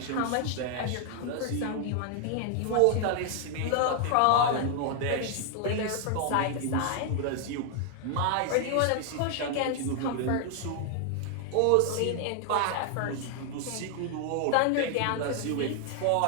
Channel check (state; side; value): different; both; correlation 0.00